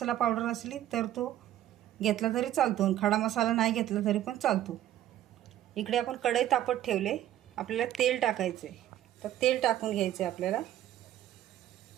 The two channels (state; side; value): quieter; left; 12.6 dB